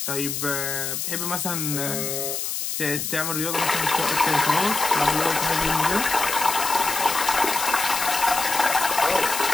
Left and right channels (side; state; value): left; noise; hiss, 3 dB below the sound